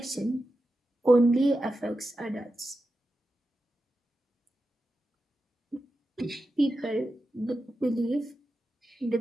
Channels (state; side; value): normal; both; correlation 0.91